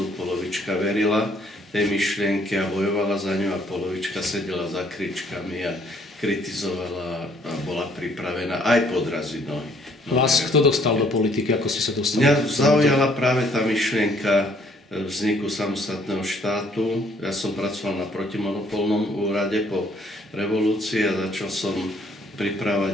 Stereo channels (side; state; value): both; normal; correlation 0.64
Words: polovička verila tej myšlienke a bojovala za ňu a polovička sedela za kričkami a kritizovala a bola pripravená aj podraziť nohy. Vás kto dostal do politiky? Ako ste sa dostali? Mňa zaujala práve tá myšlienka vzniku samostatného štátu. Ja som pracoval na protimonopolnom úrade po revolúcii a začal som pripravať